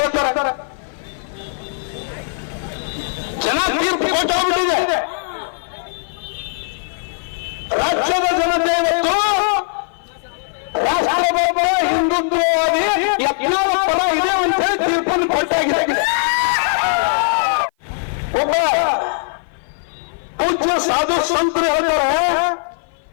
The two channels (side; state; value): right; silent; 55 dB below the other